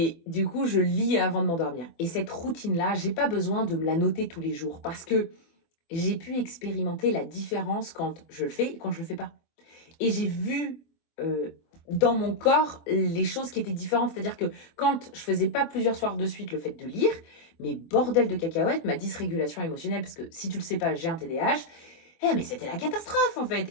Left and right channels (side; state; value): right; late; 24 ms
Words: du coup, je lis avant de m'endormir. Et cette routine-là, j'ai pas besoin de me la noter tous les jours parce que j'ai pu expérimenter la différence quand je le fais et quand je le fais pas. Et j'ai vu dans mon corps les choses qui étaient différentes. C'est-à-dire que quand je faisais pas plusieurs soirs de suite le fait de lire, mais bordel de cacahuètes, ma dysrégulation émotionnelle, parce que si tu le sais pas, j'ai un TDAH, Mais c'était la catastrophe, en fait.